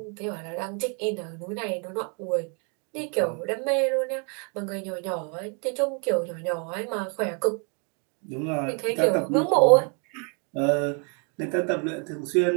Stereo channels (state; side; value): quieter; left; 37.2 dB